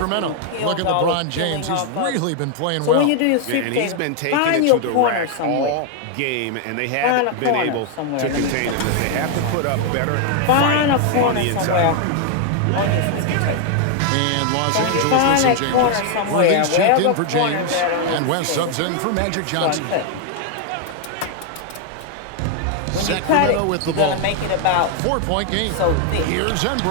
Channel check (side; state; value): both; different; correlation 0.00